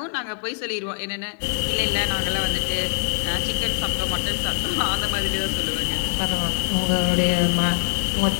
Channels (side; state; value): right; silent; 63 dB below the other